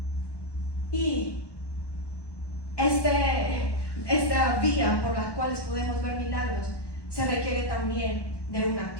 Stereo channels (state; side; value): late; right; 1.1 ms